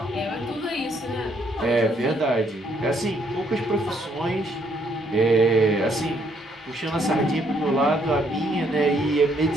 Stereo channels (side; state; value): both; normal; correlation 0.70